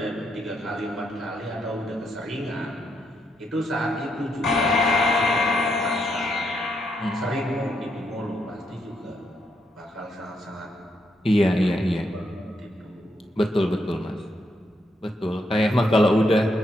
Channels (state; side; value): normal; both; correlation 0.79